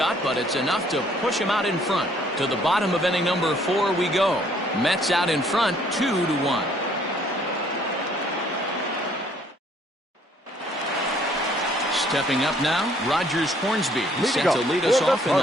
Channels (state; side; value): normal; both; correlation 0.62